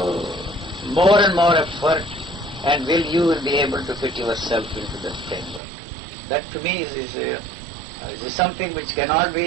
more and more effort, and you will be able to fit yourself into that framework. That to me is something which cannot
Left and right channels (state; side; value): drops out; left; at 5.6 s